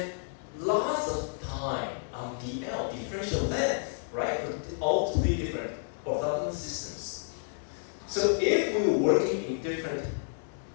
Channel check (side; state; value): right; silent; digital silence